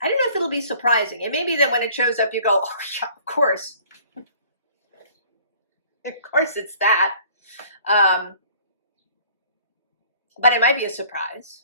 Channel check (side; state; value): both; inverted; correlation -0.53